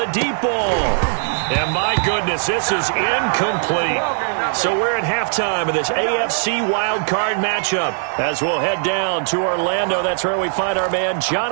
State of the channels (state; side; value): silent; left; digital silence